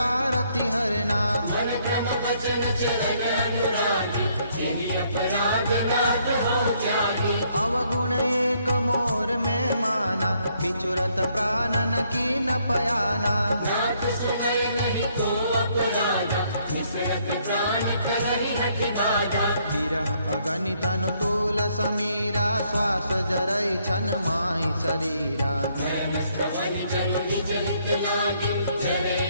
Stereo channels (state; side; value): inverted; both; correlation -0.70